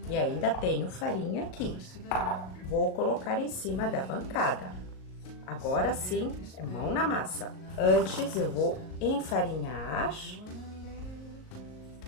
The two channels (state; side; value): late; right; 38 ms